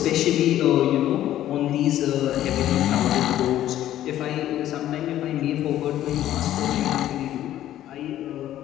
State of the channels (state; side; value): quieter; right; 12.7 dB